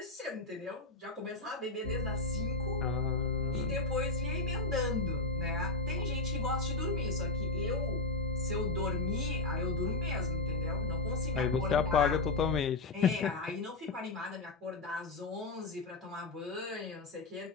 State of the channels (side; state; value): right; quieter; 3.6 dB